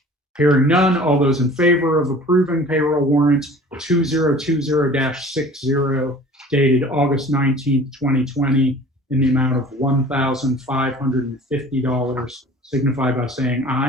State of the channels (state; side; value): normal; both; correlation 0.45